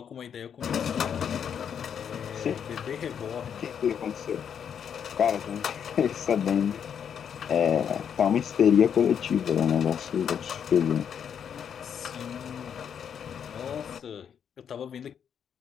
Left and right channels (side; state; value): right; quieter; 8.0 dB